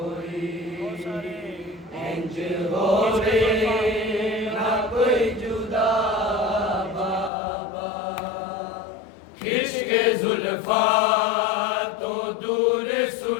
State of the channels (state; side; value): drops out; right; at 7.3 s